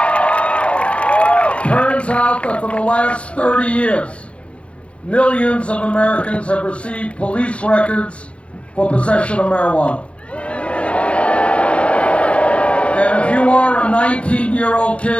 Turns out that for the last 30 years, millions of Americans have received police records for possession of marijuana. And if you are a 19-year-old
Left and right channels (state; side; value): late; right; 0.061 ms